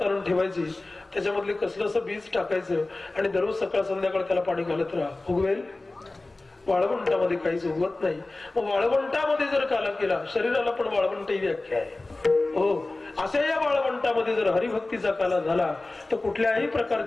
आणून ठेवायची, त्याच्यामधले कसलंस बीज टाकायचं आणि दररोज सकाळ संध्याकाळ त्याला पाणी घालत राहा, उगवेल. वाळवंटामध्ये काहीच उगवत नाही. मग वाळवंटामध्ये जर काला केला, शरीराला पण वाळवंट ही व्याख्या आहे. हो, अशा या वाळवंटामध्ये जर हरिभक्तीचा काला झाला तर कुठल्याही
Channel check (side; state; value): right; quieter; 3.0 dB